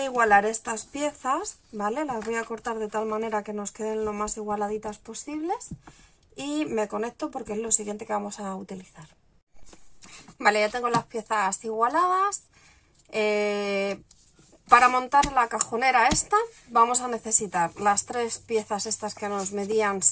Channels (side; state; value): both; identical; correlation 1.00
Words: igualar estas piezas, ¿vale? Las voy a cortar de tal manera que nos queden lo más igualaditas posibles. Y me conecto porque es lo siguiente que vamos a utilizar. Vale, ya tengo las piezas igualadas. Para montar la cajonera esta vamos a necesitar las 3 piezas estas que nos medían